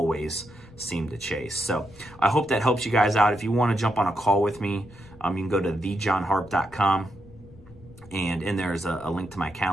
seem to chase. So I hope that helps you guys out. If you want to jump on a call with me, you can go to thejohnharp.com. And in there is a link to my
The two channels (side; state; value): left; noise; rumble, 22 dB below the sound